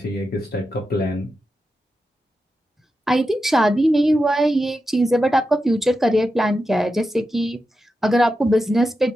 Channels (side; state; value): both; normal; correlation 0.89